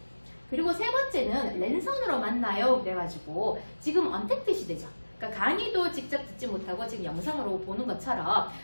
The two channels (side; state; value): both; inverted; correlation -1.00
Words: 그리고 세 번째는 랜선으로 만나요. 그래가지고 지금 언택트 시대죠. 그러니까 강의도 직접 듣지 못하고 지금 영상으로 보는 것처럼